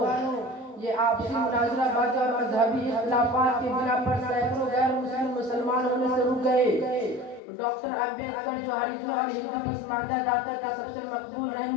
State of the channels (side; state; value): right; drops out; at 7.4 s